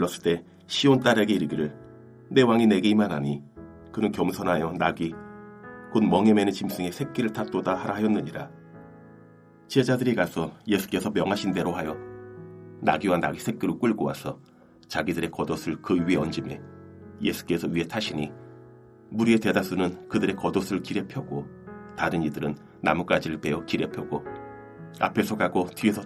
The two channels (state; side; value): identical; both; correlation 1.00